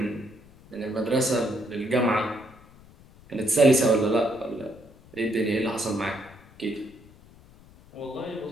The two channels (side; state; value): left; noise; rumble, 24 dB below the sound